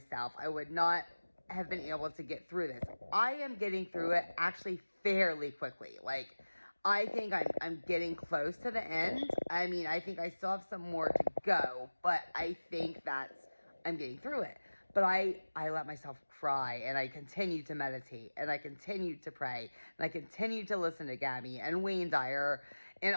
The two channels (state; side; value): inverted; both; correlation -1.00